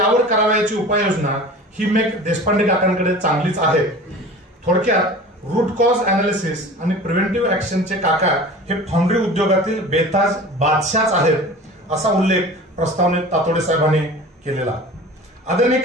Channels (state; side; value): normal; both; correlation 0.38